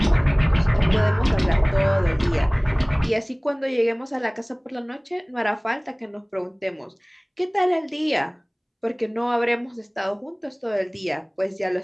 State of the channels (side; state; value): both; identical; correlation 1.00